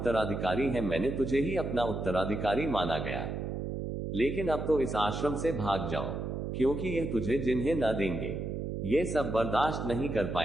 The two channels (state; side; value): noise; right; hum, 4 dB below the sound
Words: है। मैंने तुझे ही अपना उत्तराधिकारी माना गया, लेकिन अब तो इस आश्रम से भाग जाओ, क्योंकि यह तुझे जिन्हें न देंगे ये सब बर्दाश्त नहीं कर